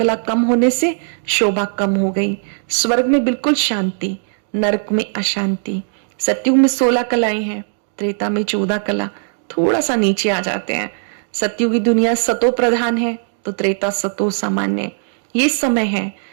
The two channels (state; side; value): silent; left; digital silence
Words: कम होने से शोभा कम हो गई। स्वर्ग में बिल्कुल शांति, नरक में अशांति। सतयुग में 16 कलाएं हैं, त्रेता में 14 कला, थोड़ा सा नीचे आ जाते हैं। सतयुगी दुनिया सतो प्रधान है तो त्रेता सतो सामान्य। ये समय है